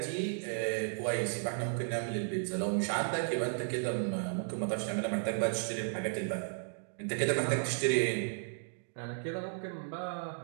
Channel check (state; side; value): silent; left; digital silence